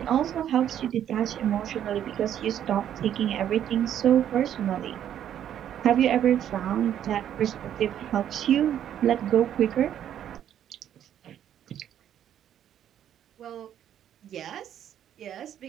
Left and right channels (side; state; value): left; quieter; 10.3 dB